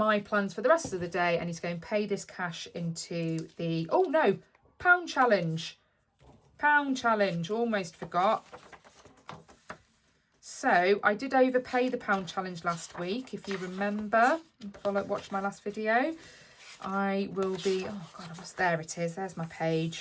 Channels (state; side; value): identical; both; correlation 1.00